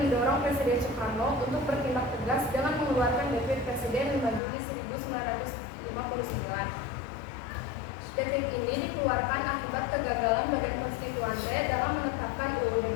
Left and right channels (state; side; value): drops out; right; at 4.4 s